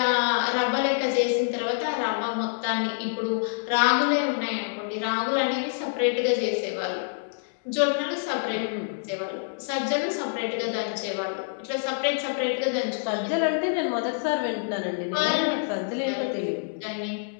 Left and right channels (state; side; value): silent; right; digital silence